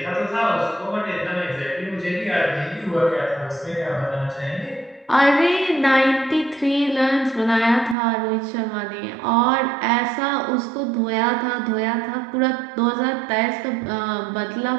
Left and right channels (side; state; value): left; drops out; at 8.0 s